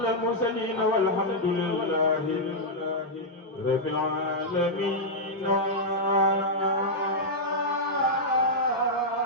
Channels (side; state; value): both; normal; correlation -0.06